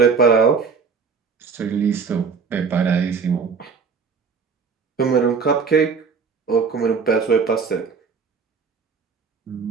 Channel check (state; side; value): quieter; left; 5.5 dB